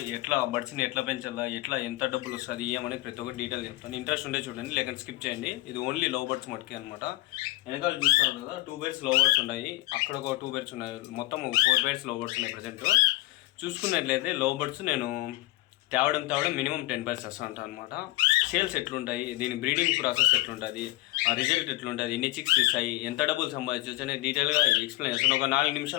ఎట్లా బర్డ్స్ని ఎట్లా పెంచాలా, ఎట్లా ఎంత డబ్బులు వస్తుంది ఏమనేది ప్రతి ఒక్కటి డీటెయిల్ చెప్తాను. ఇంట్రెస్ట్ ఉంటే చూడండి, లేకపోతే స్కిప్ చేయండి. ఇది ఓన్లీ లవ్ బర్డ్స్ మటుకే అనమాట. వెనకాల చూస్తాను కదా, 2 pairs లవ్ బర్డ్స్ ఉన్నాయి, అక్కడ ఒక 2 pairs ఉన్నాయి, మొత్తం 4 pairs లవ్ బర్డ్స్ ఉన్నాయి ప్రజెంట్. చూసుకున్నట్లయితే లవ్ బర్డ్స్ నేను తేవడం మినిమం 10 pairs వస్తూ ఉంటాను అనమాట. సేల్స్ ఎట్లుంటాయి, దీని బ్రీడింగ్ ప్రాసెస్ ఎట్లుంటుంది, ఆ రిజల్ట్ ఎట్లుంటుంది, ఎన్ని చిక్స్ ఇస్తాయి, ఎంత డబ్బులు సంపాదించవచ్చు అనేది డీటెయిల్గా ఎక్స్ప్లెయిన్ చేస్తాను. ఒక 4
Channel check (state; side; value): quieter; right; 19.2 dB